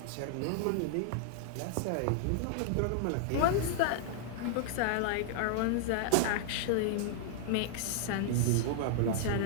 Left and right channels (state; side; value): different; both; correlation -0.01